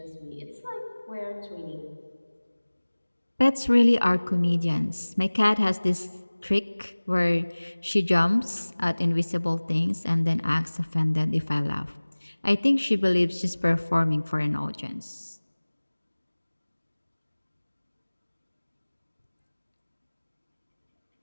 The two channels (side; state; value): both; inverted; correlation -1.00